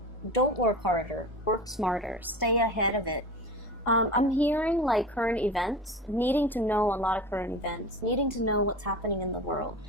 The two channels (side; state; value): both; normal; correlation 0.32